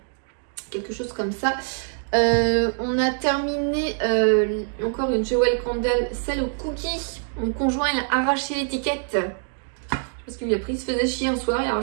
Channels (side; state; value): left; silent; 55 dB below the other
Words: quelque chose comme ça. On a terminé encore une Jewel Candle, celle au cookie. Mon conjoint il a arraché l'étiquette parce qu'il a pris, il se faisait chier un soir, il a